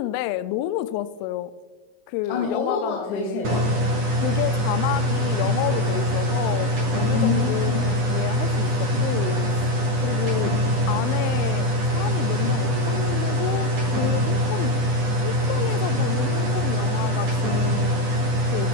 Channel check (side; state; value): left; late; 10 ms